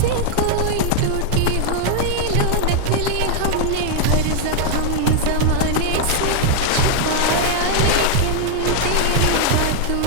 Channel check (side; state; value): both; different; correlation 0.00